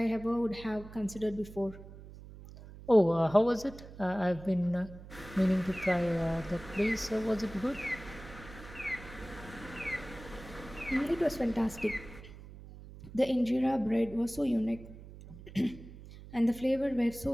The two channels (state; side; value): noise; right; hum, 16 dB below the sound